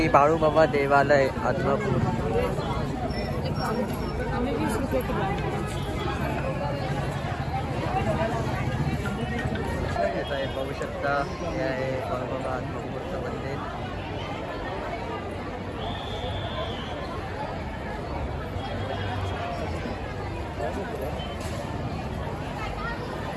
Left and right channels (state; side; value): identical; both; correlation 1.00